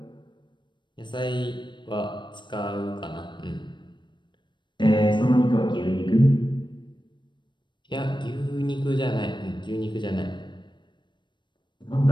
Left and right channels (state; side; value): late; right; 0.22 ms